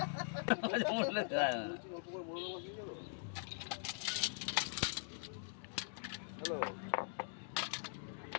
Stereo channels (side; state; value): right; silent; digital silence